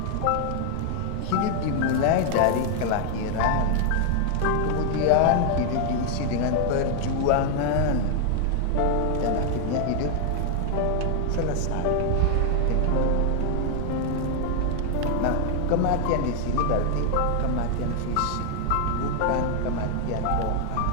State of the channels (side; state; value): both; different; correlation 0.00